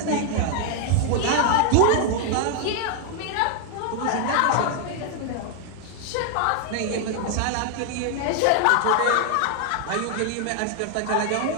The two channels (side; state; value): both; different; correlation 0.00